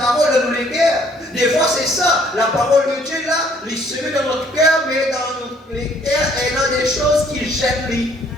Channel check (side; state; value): both; normal; correlation 0.62